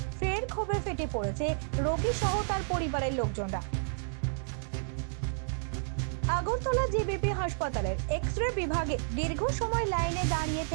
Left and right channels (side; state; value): left; silent; digital silence